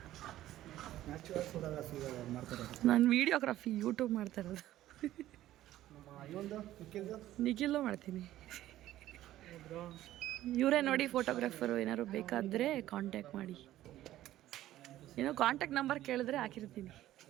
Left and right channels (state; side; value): quieter; left; 14.0 dB